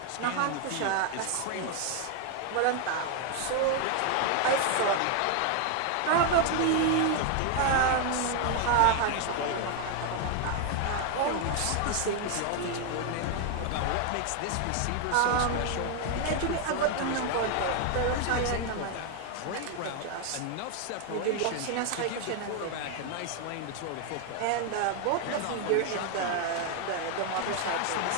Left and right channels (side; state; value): both; different; correlation 0.00